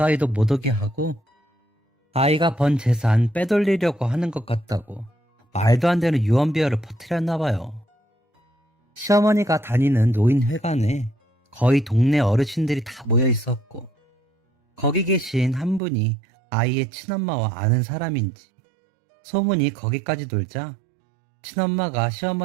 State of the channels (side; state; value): left; drops out; at 15.8 s